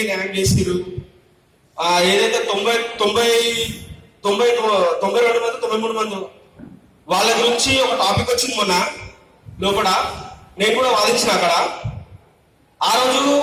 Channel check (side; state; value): both; identical; correlation 1.00